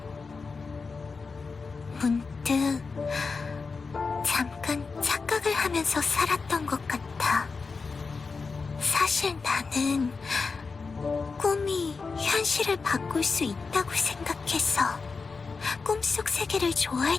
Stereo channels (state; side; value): quieter; right; 4.6 dB